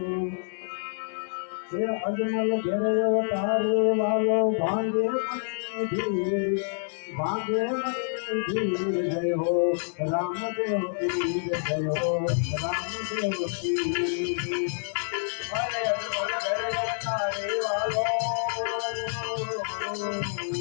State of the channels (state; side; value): silent; right; 59 dB below the other